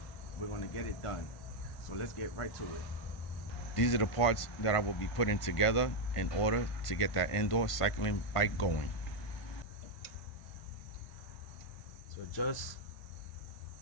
we're going to get it done. So let's get right to it. These are the parts that I will be putting together in order to get that indoor cycling bike going. So just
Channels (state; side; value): late; right; 1.5 ms